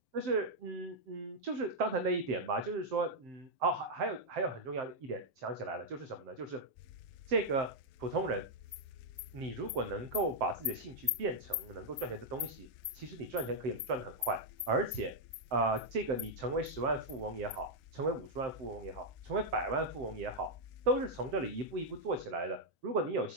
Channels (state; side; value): late; left; 7.7 ms